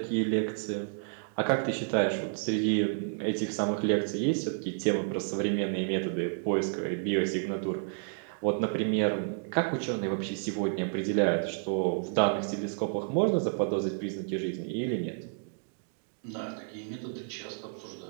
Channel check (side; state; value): left; silent; digital silence